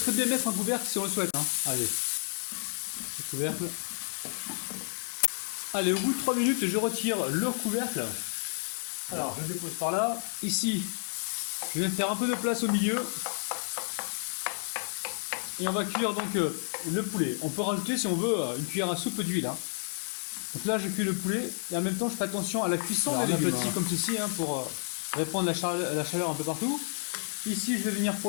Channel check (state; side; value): silent; right; digital silence